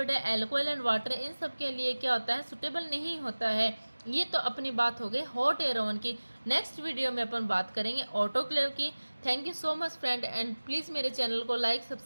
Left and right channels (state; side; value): inverted; both; correlation -1.00